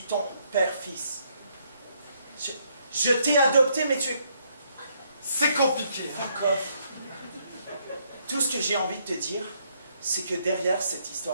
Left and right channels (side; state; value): both; inverted; correlation -0.71